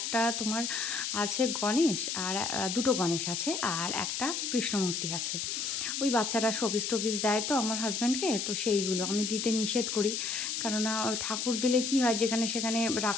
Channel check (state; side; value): noise; left; hiss, 2 dB below the sound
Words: তোমার আছে গণেশ, আর দুটো গণেশ আছে, আর একটা কৃষ্ণ মূর্তি আছে। ওই বাচ্চারা শোপিস টোপিস দেয় তো আমার হাজব্যান্ডকে, তো সেইগুলো আমি দিতে নিষেধ করি। কেননা ঠাকুর দিলে কি হয়, যেখানে সেখানে